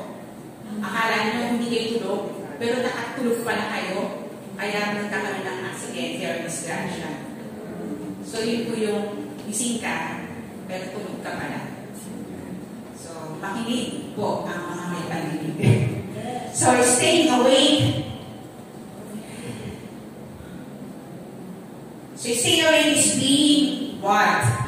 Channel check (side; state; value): both; identical; correlation 1.00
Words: akala nyo hindi kayo tulog, pero nakatulog pala kayo. Kaya nagkakaroon ng aksidente or disgrasya. So, yun po yung gising ka, pero tulog ka pala. So, makinig po ang mga may paninig. So, staying awake. So, staying awake is being what?